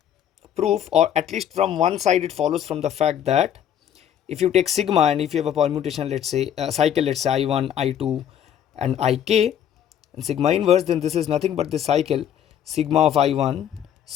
or at least from one side, it follows from the fact that if you take sigma and if you have a permutation, let's say a cycle, let's say I1, I2 and Ik, and sigma inverse, then this is nothing but the cycle sigma of I1,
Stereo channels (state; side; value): quieter; right; 9.7 dB